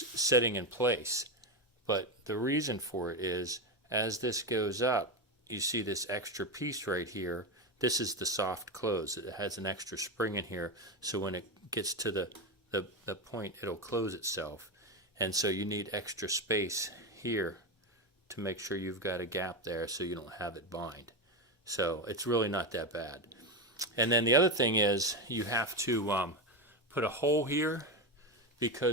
sitting in place. But the reason for it is, as this goes up, you see this extra piece right here. This is the soft close. It has an extra spring in here, so when it gets to the point, it'll close itself. And so you need extra space here to make sure you've got a gap there so you don't have it bind. So it's really not that bad. And then the other thing is, you have to put a hole here,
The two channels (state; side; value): normal; both; correlation 0.14